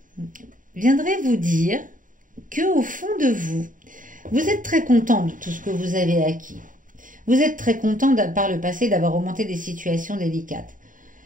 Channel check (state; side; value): late; left; 0.39 ms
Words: viendrait vous dire que au fond de vous, vous êtes très content de tout ce que vous avez acquis. Vous êtes très content par le passé d'avoir remonté des situations délicates.